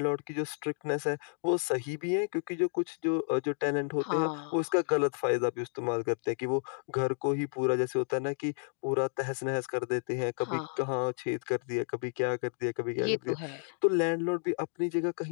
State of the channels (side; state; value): right; silent; 57 dB below the other